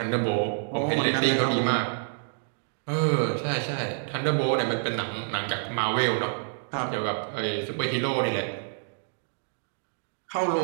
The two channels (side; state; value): left; silent; digital silence